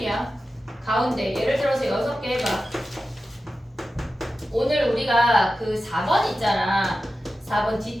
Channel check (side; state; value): both; normal; correlation 0.93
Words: 가운데 예를 들어서 6개 해봐. 오늘 우리가 그 4번 있잖아. 4번